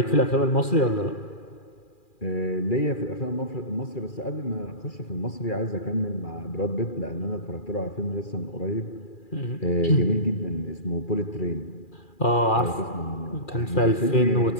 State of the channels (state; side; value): late; right; 2.4 ms